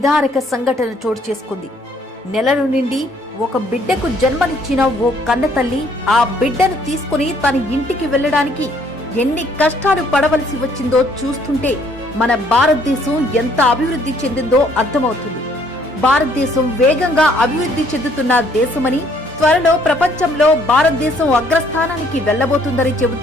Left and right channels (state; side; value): normal; both; correlation 0.64